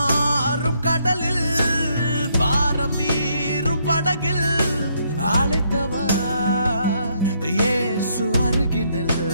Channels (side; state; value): both; inverted; correlation -0.72